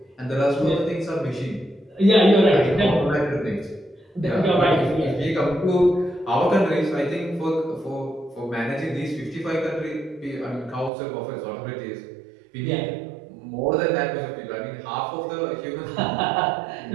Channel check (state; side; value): drops out; left; at 10.9 s